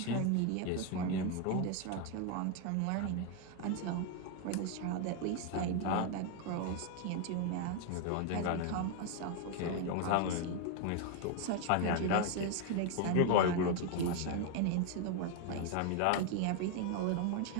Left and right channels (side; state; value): both; different; correlation 0.01